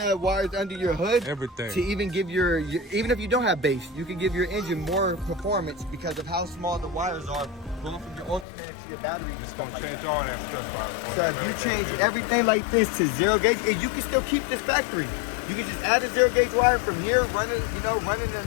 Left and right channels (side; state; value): right; drops out; at 8.5 s